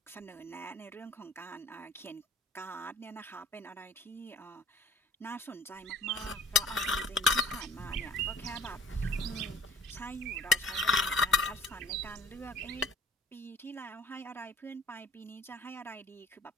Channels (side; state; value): both; normal; correlation 0.53